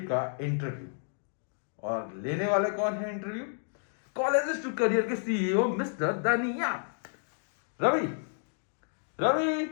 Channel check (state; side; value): silent; right; digital silence